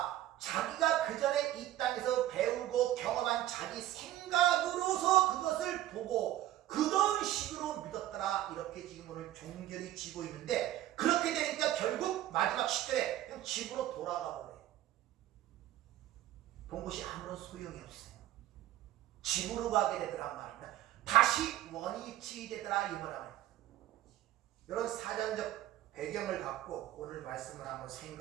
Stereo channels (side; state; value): left; quieter; 13.9 dB